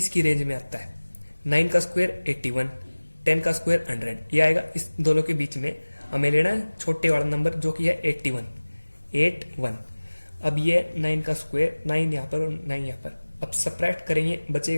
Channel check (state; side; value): inverted; both; correlation -1.00